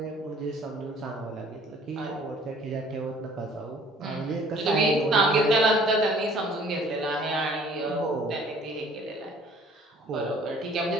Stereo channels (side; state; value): both; normal; correlation 0.54